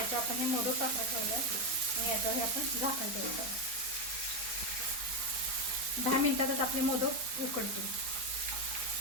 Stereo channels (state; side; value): late; left; 4.6 ms